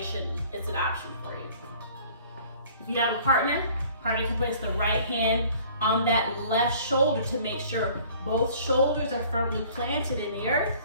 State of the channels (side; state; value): both; inverted; correlation -0.52